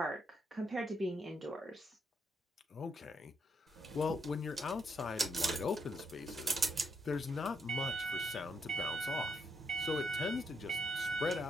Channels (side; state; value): both; normal; correlation 0.77